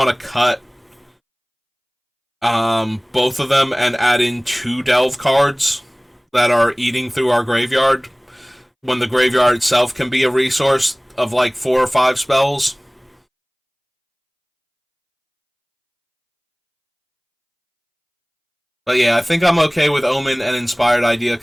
to cut both of them and add in 2 Delve cards that are eating through our graveyard, when the graveyard itself can be a resource of like 4 or 5 spells. But yeah, I think I'm okay with Omen and Inspired Idea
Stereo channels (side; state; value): both; identical; correlation 1.00